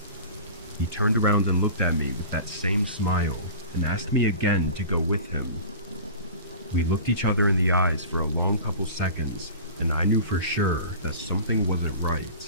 He turned around and looked at me with that same smile and asked me again to go with him. We looked each other in the eyes for a long couple seconds, and I knew for sure that something wasn't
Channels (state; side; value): inverted; both; correlation -0.37